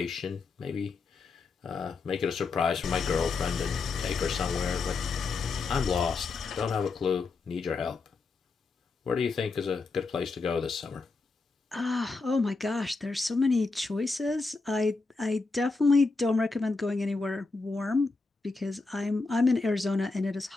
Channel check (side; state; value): right; quieter; 4.0 dB